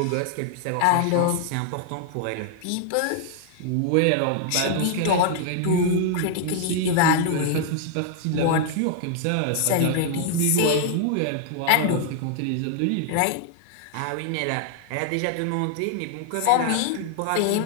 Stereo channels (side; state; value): both; different; correlation 0.00